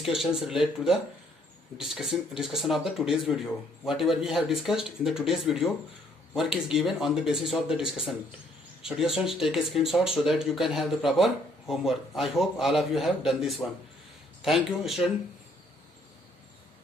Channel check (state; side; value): normal; both; correlation 0.65